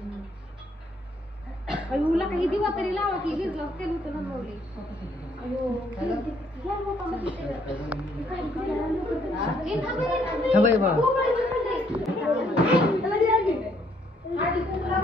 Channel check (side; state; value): both; normal; correlation 0.68